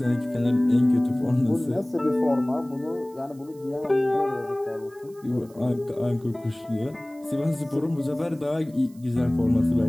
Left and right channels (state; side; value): noise; right; hiss, 28 dB below the sound